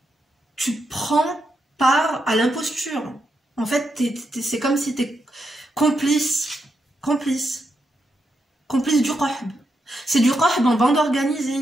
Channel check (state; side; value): normal; both; correlation 0.83